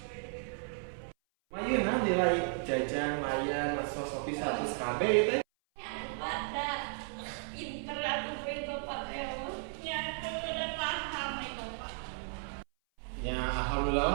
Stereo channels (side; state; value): left; silent; 55 dB below the other